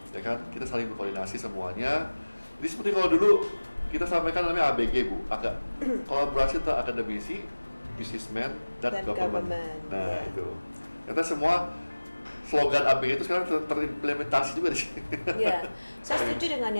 kan, kita saling berkoordinasi semuanya. Jadi seperti kalau dulu kita sampaikan namanya ABG Bu, agak kolaborasi antara akademisi, businessman, dan government. Nah itu, kita semua slogan ABG itu sekarang terimplementasi juga di sini. Iya, saya setuju dengan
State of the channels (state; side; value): inverted; both; correlation -1.00